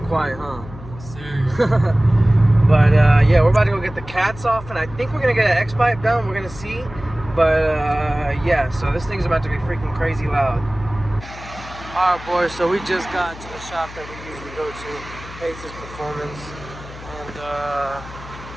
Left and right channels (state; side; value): noise; left; hum, 15 dB below the sound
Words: quiet, huh? But yeah, we're about to go get the cats off, and I think we're gonna get an X-pipe done. We're gonna see. But yeah, so this thing's about to be freaking crazy loud. Alright boys, so we just got to the shop that we usually go to, Pace's Performance, and